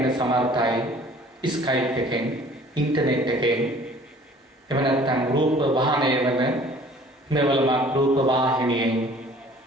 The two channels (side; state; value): both; normal; correlation 0.51